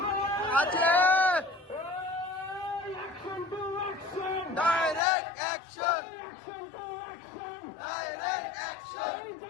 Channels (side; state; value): right; drops out; at 5.0 s